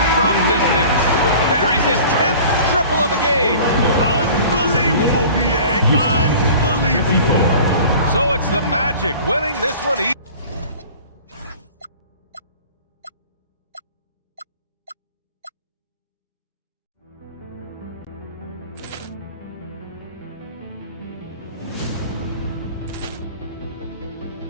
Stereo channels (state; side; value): inverted; both; correlation -0.44